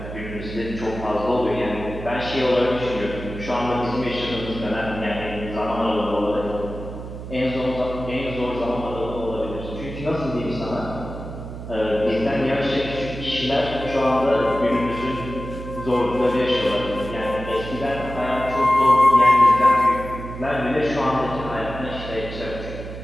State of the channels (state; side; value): noise; right; hum, 10 dB below the sound